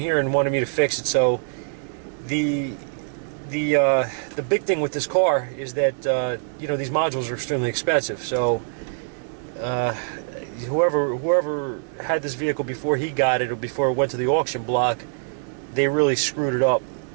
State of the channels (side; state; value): left; silent; digital silence